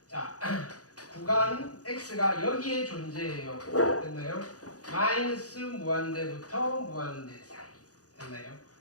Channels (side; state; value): right; late; 0.67 ms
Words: 자, 구간 x가 여기에 존재해요. 됐나요? 마이너스 무한대부터 무한대 사이. 됐나요?